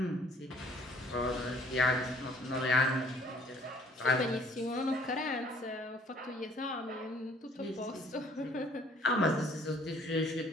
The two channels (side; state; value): both; normal; correlation 0.59